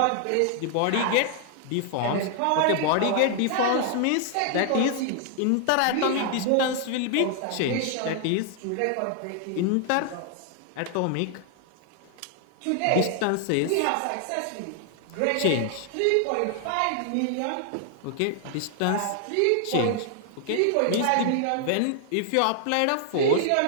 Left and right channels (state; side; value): different; both; correlation 0.00